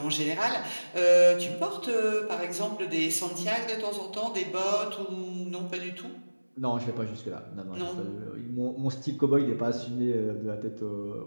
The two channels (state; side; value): inverted; both; correlation -1.00